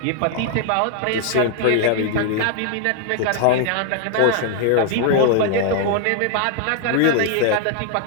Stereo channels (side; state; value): both; different; correlation 0.00